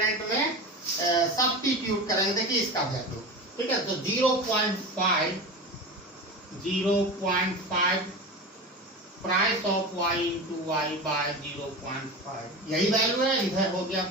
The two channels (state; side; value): normal; both; correlation 0.28